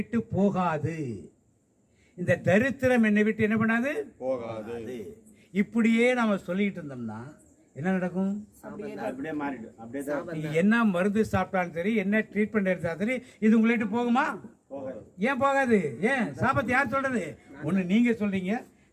போகாது, இந்த தரித்திரம் என்னை விட்டு என்ன பண்ணாது? போகாது. இப்படியே நாம சொல்லிட்டு இருந்தோம்னா என்ன நடக்கும்? என்ன மருந்து சாப்பிட்டாலும் சரி, என்ன ட்ரீட்மெண்ட் எடுத்தாலும் சரி, இது உங்களை விட்டு போகுமா? ஏன் போகாது? ஏன்? சாபத்தை யார் சொல்றது? ஒண்ணு நீங்க சொல்றீங்க,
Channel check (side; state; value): both; identical; correlation 1.00